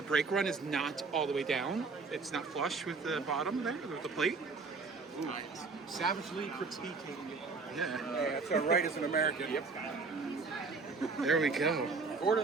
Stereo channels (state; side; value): quieter; left; 4.3 dB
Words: brake run is not all the way down. It's not flush with the bottom there, with the plate. Savagely critiquing it. Yeah. That's our right as an American. Yep. There we go.